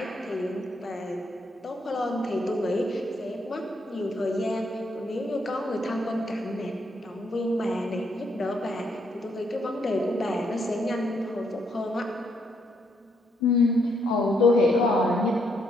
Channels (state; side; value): normal; both; correlation 0.74